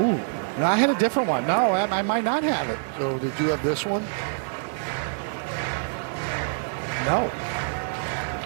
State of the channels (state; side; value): silent; left; 61 dB below the other